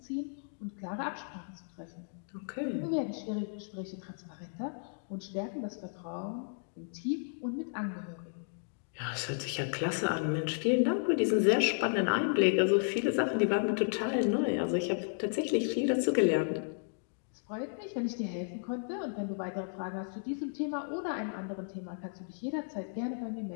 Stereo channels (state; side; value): silent; right; digital silence